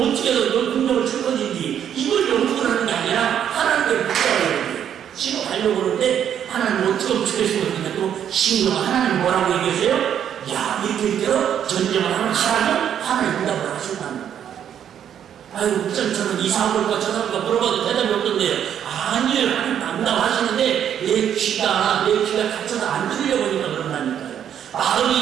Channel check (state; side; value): quieter; left; 9.3 dB